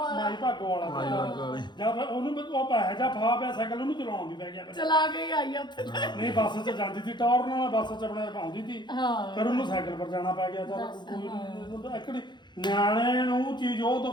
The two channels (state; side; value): late; right; 0.21 ms